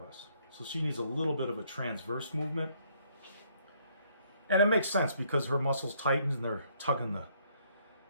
So she needs a little bit of a transverse movement. And it makes sense because her muscles tighten and they're tugging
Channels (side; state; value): both; inverted; correlation -0.67